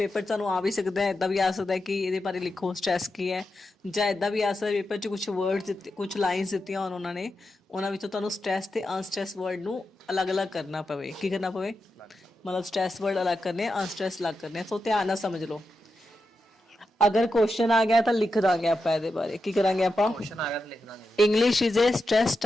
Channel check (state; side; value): normal; both; correlation 0.88